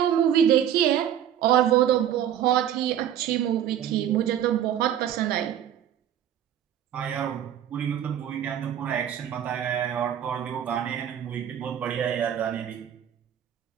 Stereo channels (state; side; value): quieter; left; 10.2 dB